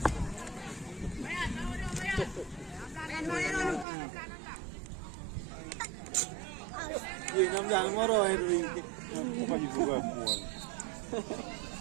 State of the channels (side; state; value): left; drops out; at 3.9 s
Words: Jangan moro itu. Bukan juga mual.